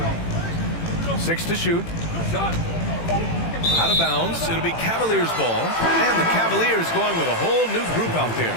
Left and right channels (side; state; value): right; late; 18 ms